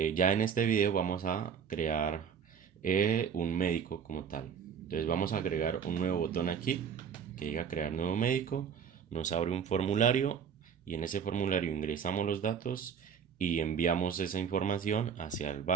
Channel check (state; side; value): quieter; left; 7.1 dB